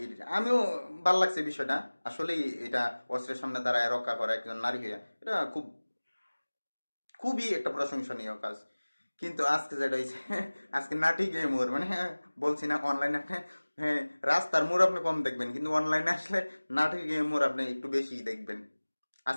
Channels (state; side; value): inverted; both; correlation -1.00